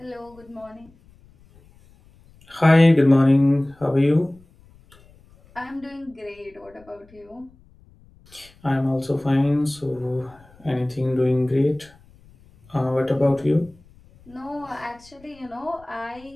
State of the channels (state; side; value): noise; left; rumble, 28 dB below the sound